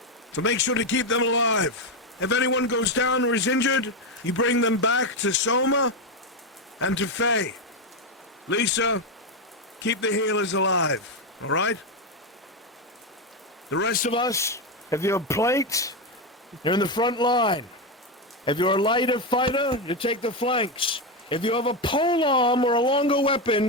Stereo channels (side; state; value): both; normal; correlation 0.09